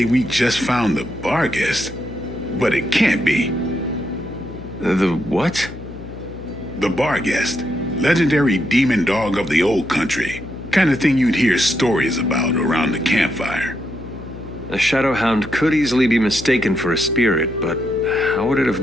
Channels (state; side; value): noise; left; hum, 14 dB below the sound